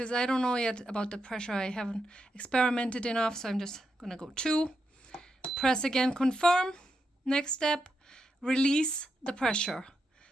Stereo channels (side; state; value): both; normal; correlation 0.84